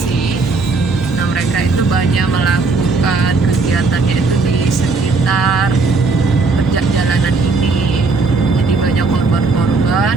Nah, mereka itu banyak melakukan kegiatannya itu di sekitar jalanan ini. Jadi banyak korban-korban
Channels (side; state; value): left; quieter; 3.9 dB